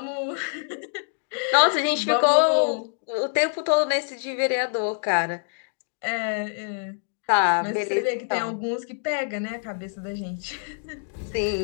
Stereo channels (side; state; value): right; silent; digital silence